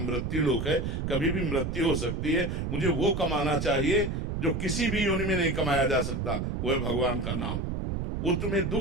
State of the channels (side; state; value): right; noise; rumble, 2 dB below the sound